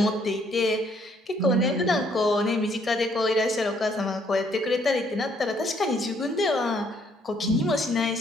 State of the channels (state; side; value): normal; both; correlation 0.67